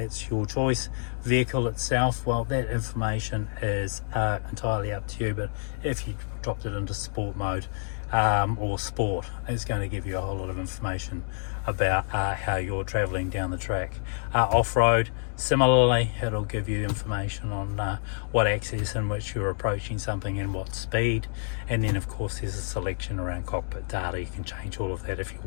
your choice. Vehicle itself, well, that information is entirely up to you, but if you dropped it into sport mode or sport, it's going to give you a whole lot of information about how you're traveling down the track. Off-road, similarly, it'll give you information on what axis in which you're approaching something and what speed. And then of course there's a selection around cockpit data. You can change all of that if you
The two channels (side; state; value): right; silent; digital silence